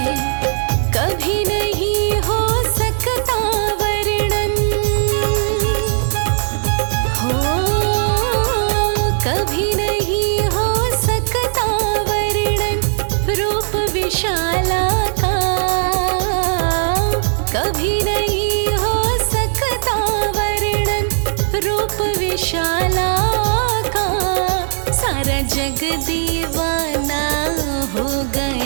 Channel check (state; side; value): silent; left; digital silence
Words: कभी नहीं हो सकता वर्णन, हो कभी नहीं हो सकता वर्णन रूप विशाला का। सारा जग दीवाना हो